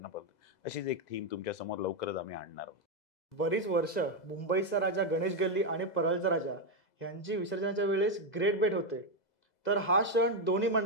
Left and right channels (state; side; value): late; right; 2.0 ms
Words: अशीच एक थीम तुमच्या समोर लवकरच आम्ही आणणार आहोत. बरीच वर्ष मुंबईचा राजा गणेश गल्ली आणि परळचा राजा यांची विसर्जनाच्या वेळेस ग्रेट भेट होते. तर हा क्षण दोन्ही